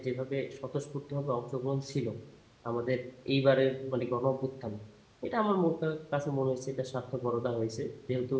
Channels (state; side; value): identical; both; correlation 1.00